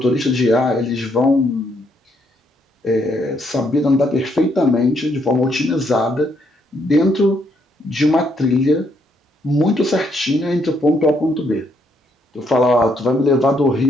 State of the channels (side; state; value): both; normal; correlation 0.73